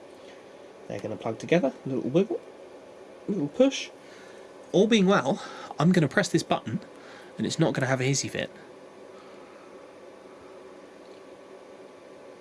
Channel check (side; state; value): both; identical; correlation 1.00